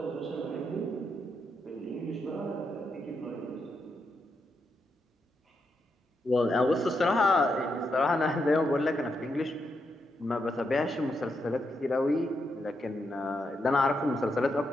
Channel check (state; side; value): normal; both; correlation 0.82